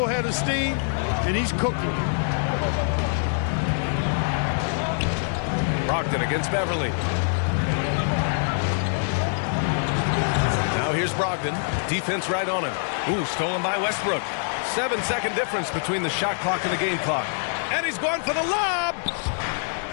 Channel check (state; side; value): silent; right; digital silence